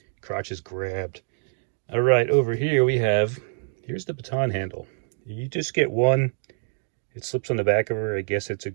Crotch is grabbed. All right, over here we have, here's the baton handle. You just get one. It slips on the back of her. I guess it's a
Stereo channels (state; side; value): silent; left; digital silence